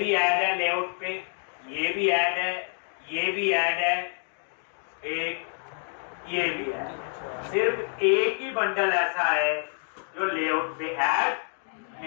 ऐड है लेआउट पे, ये भी ऐड है, ये भी ऐड है, एक ये भी है। सिर्फ एक ही बंडल ऐसा है जो लेआउट पे ऐड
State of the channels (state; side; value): silent; right; 60 dB below the other